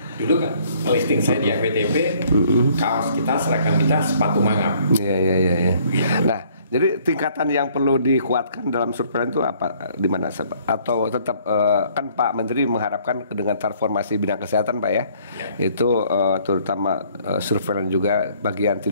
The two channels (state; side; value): inverted; both; correlation -0.61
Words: dulu kan listing saya di FWTP, kaos kita, seragam kita sepatu mangap. Iya. Nah, Jadi tingkatan yang perlu dikuatkan dalam surveillance itu apa? Di mana? Atau tetap kan Pak Menteri mengharapkan dengan transformasi bidang kesehatan Pak ya, itu terutama surveillance juga bagian